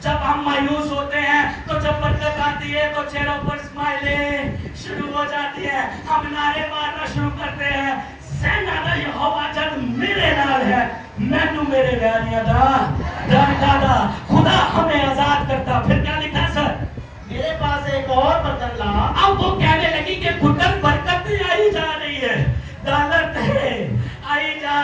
جب ہم مایوس ہوتے ہیں تو جب برکت آتی ہے تو چہروں پر اسمائلیں شروع ہو جاتی ہے. ہم نعرے مارنا شروع کرتے ہیں, سینا دا یہوہ جد میرے نال ہے مینو میرے ویریاں دا ڈر ڈادا. خدا ہمیں آزاد کرتا. پھر کیا لکھا سر؟ میرے پاس ایک اور برتن لا. اب وہ کہنے لگی کہ پتر برکت نہیں آئی جا رہی ہے, ڈالر تھے آئی جا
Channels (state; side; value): identical; both; correlation 1.00